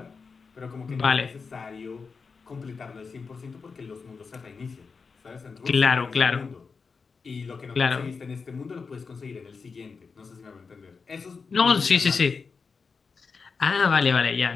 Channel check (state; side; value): quieter; right; 5.1 dB